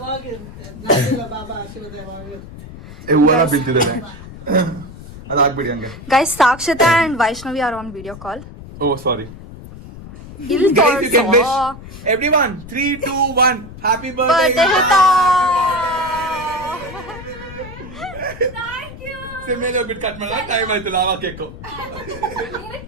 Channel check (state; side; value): noise; left; rumble, 15 dB below the sound